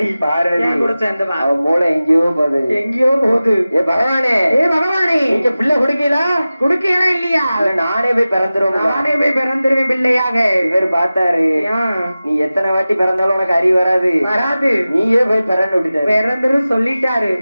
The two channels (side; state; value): both; inverted; correlation -0.96